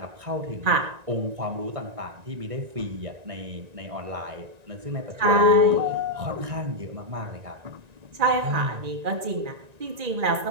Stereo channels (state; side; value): late; left; 1.9 ms